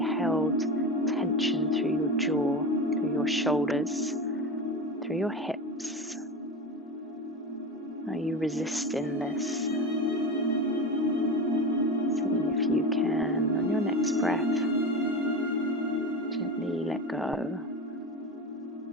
tension through your jaw, through your shoulders, through your hips. Are you resisting this? Seeing if you can, on your next breath, gently let go.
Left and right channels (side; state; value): both; normal; correlation 0.24